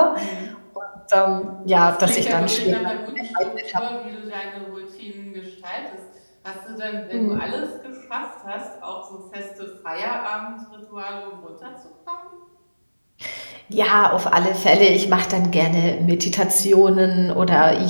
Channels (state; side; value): inverted; both; correlation -1.00